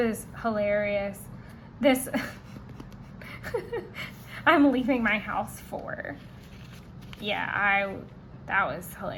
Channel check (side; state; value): both; identical; correlation 1.00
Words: hilarious. This, I'm leaving my house for. Yeah, that was